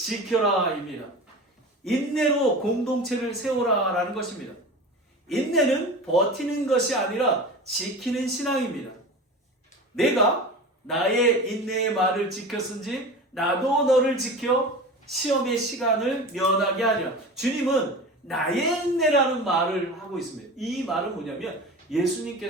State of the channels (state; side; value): normal; both; correlation 0.33